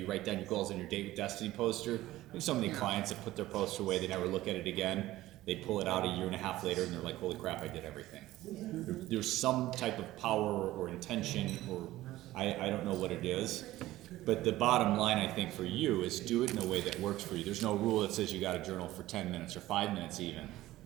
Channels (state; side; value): quieter; left; 16.0 dB